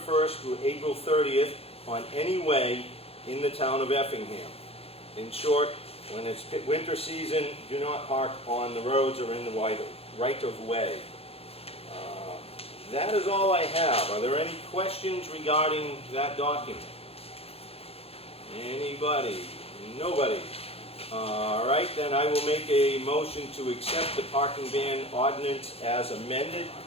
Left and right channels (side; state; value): right; late; 0.29 ms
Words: through April 30th on any way in the town of Effingham. In short, when it's winter season, do not park on the roads or in the right of way. That is all I have. Are there any questions regarding that document? Anybody? Nobody? All right, then I will make a motion to accept the parking ban ordinance as amended.